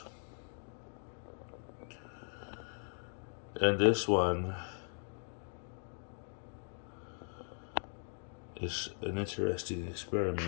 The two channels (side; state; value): right; silent; 52 dB below the other